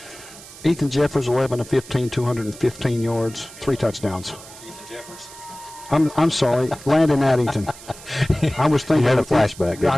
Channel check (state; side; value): noise; right; hiss, 18 dB below the sound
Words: Ethan Jeffers, 11 of 15, 215 yards, 3 touchdowns. I'm sorry, Landon Addington. I was thinking. You had a flashback. I